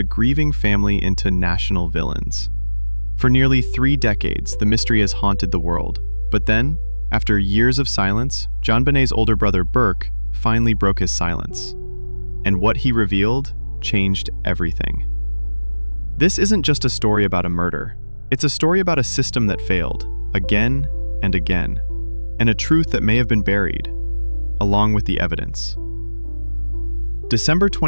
grieving family into national villains. For nearly 3 decades, the mystery has haunted the world. But then, after years of silence, JonBenet's older brother Burke finally broke his silence. And what he revealed changed everything. This isn't just a story about a murder. It's a story about a system that failed, again and again, and a truth that may have been buried, along with the evidence. December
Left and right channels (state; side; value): inverted; both; correlation -1.00